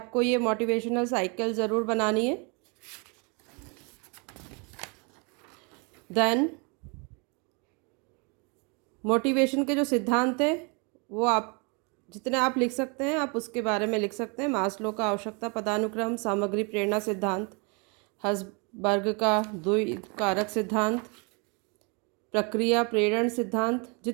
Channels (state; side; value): quieter; left; 32.9 dB